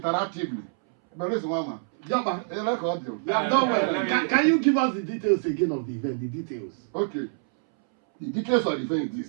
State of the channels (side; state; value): left; silent; 61 dB below the other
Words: But listen, Mama. Can you give us the details again of the event? The details. Okay. The details of the event